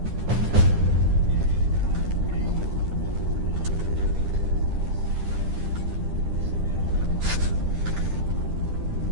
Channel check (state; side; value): late; left; 10 ms